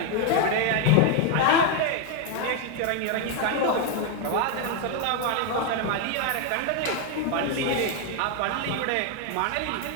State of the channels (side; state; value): both; different; correlation 0.01